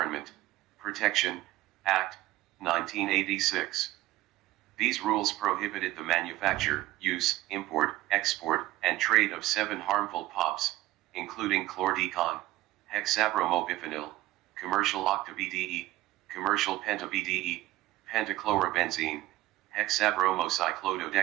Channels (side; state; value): left; quieter; 16.6 dB